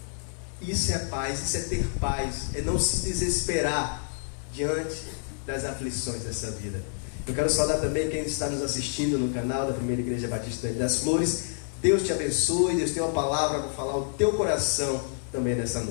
Isso é paz, isso é ter paz, é não se desesperar diante das aflições dessa vida. Eu quero saudar também quem está nos assistindo no canal da Primeira Igreja Batista das Flores. Deus te abençoe, Deus tem uma palavra para falar ao teu coração também nessa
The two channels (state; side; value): silent; right; 59 dB below the other